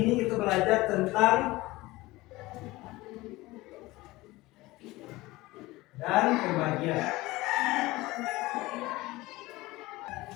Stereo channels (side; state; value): right; quieter; 19.7 dB